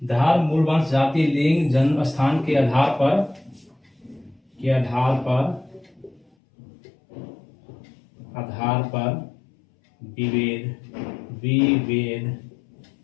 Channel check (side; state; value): right; drops out; at 6.2 s